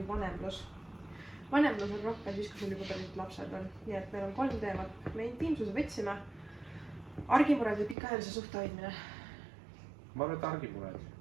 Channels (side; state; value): left; drops out; at 8.0 s